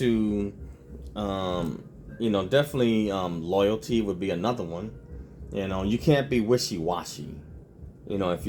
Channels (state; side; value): identical; both; correlation 1.00